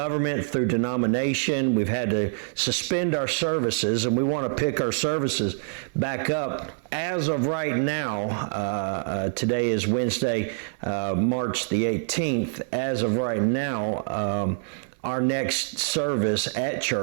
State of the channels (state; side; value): silent; left; digital silence